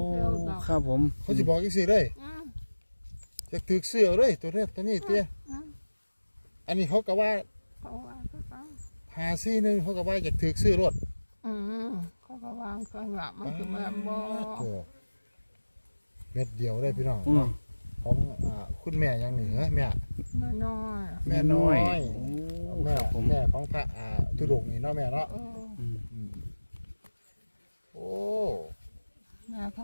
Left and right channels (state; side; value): inverted; both; correlation -1.00